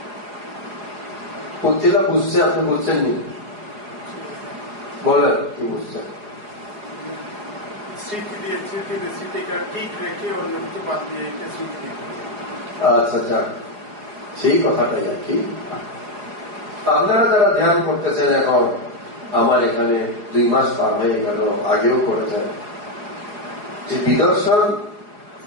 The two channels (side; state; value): left; late; 4.8 ms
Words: পথিলা বুঝছে, আপনি বুঝছেননি? বলেন কি বুঝছেন? আচ্ছা যাক, সেই কথাটাই আর কি। আপনারা যারা ধ্যান করতেছেন এখন, আমার এখানে 2 মাস পার হয়ে গেল, আগেও করেছেন, যে বিদর্শন